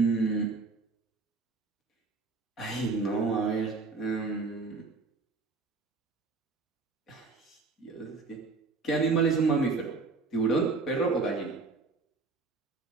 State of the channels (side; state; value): left; quieter; 4.0 dB